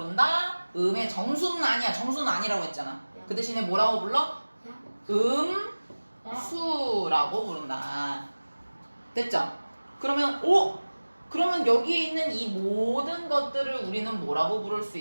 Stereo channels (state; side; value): inverted; both; correlation -1.00